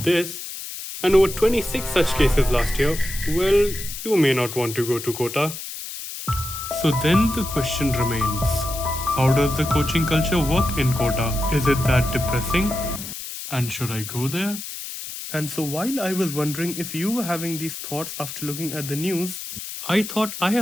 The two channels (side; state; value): left; noise; hiss, 9 dB below the sound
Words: this, and over 26 such cases last year, well, you may not want to go to Kota. So then the question remains, how does the coaching culture work in Kota? Is it that depressing? And should I go there? And so while I was wondering if you were having these thoughts after looking at the news, I thought I